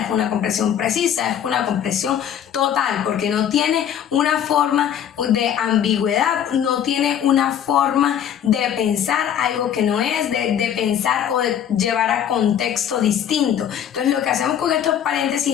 es una comprensión precisa, es una comprensión total, porque no tiene una forma de ambigüedad, no tiene una forma de pensar algo que no es, de pensar o de llevar a contexto distinto. Entonces lo que hacemos con estos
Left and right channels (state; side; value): quieter; right; 9.5 dB